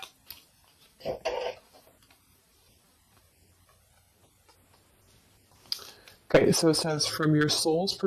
Okay, so it says, from your soul's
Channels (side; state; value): both; identical; correlation 1.00